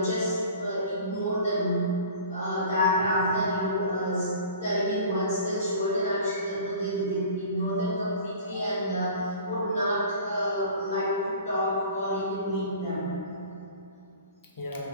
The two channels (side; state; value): both; inverted; correlation -0.42